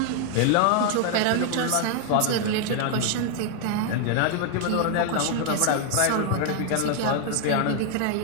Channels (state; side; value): different; both; correlation 0.00